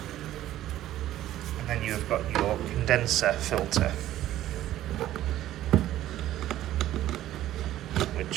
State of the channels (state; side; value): quieter; left; 13.5 dB